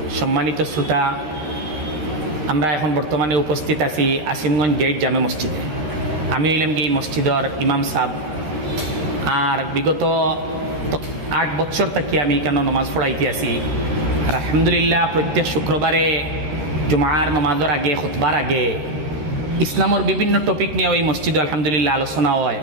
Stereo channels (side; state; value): left; late; 13 ms